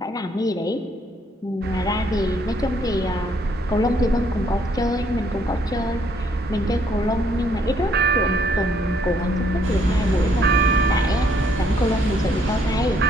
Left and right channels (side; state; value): both; normal; correlation 0.67